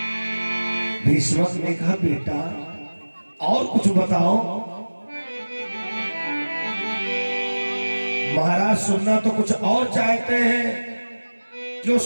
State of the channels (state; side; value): inverted; both; correlation -1.00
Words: भीष्मक ने कहा, बेटा और कुछ बताओ। महाराज, सुनना तो कुछ और चाहते हैं, जो